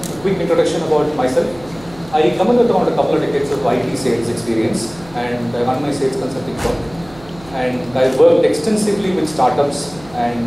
quick introduction about myself. I come in with around a couple of decades of IT sales experience, and I run my sales consulting firm. And I worked extensively with startups,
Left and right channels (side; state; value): right; noise; hum, 22 dB below the sound